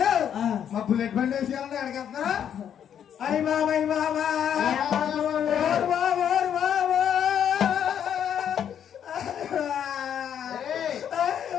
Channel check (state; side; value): quieter; right; 9.0 dB